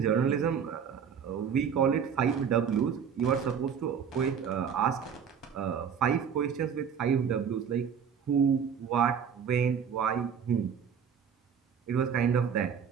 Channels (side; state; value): left; quieter; 7.4 dB